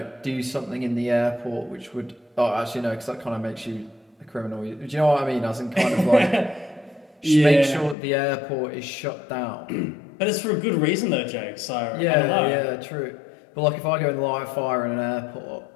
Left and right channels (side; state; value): right; drops out; at 8.0 s